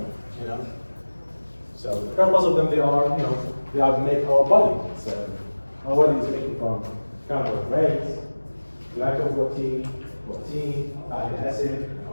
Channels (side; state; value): both; inverted; correlation -1.00